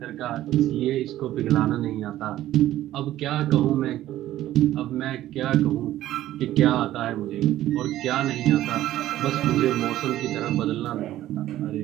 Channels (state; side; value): quieter; left; 13.9 dB